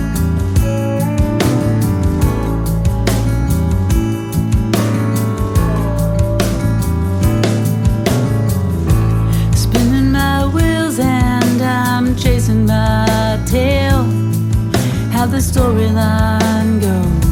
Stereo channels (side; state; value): both; identical; correlation 1.00